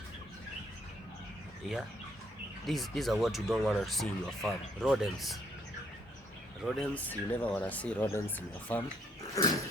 Yeah, these are what you don't want to see in your farm. Rodents. Rodents, you never want to see rodents in your farm.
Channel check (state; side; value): normal; both; correlation 0.69